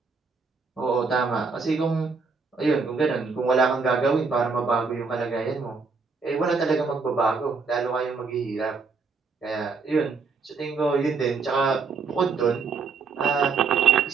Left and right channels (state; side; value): quieter; left; 4.8 dB